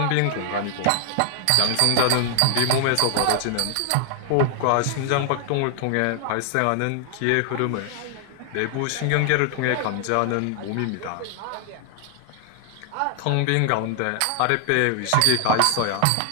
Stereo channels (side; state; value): both; different; correlation 0.00